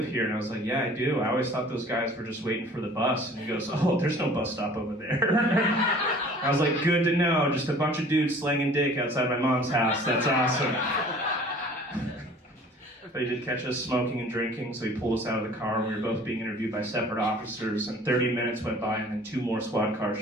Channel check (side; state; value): both; normal; correlation 0.49